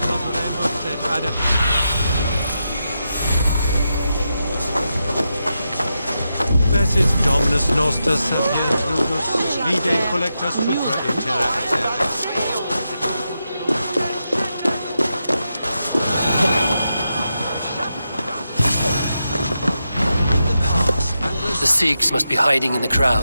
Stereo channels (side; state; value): both; inverted; correlation -0.87